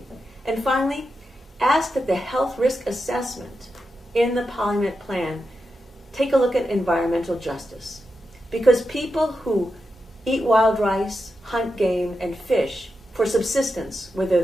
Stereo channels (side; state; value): both; normal; correlation 0.88